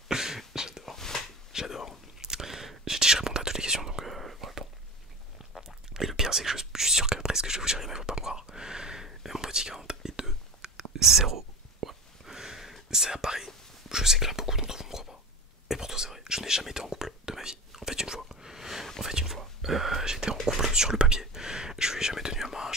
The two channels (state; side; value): normal; both; correlation 0.31